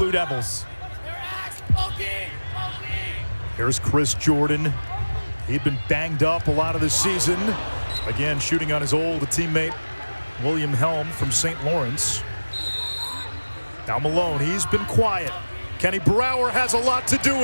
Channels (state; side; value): inverted; both; correlation -1.00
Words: Devils. Here's Chris Jordan. He'd been banged up a lot of this season. Again, shooting on his old teammate, William Helm from St. Lawrence. Now Malone, he's been quiet. Kenny Brower has a lot to do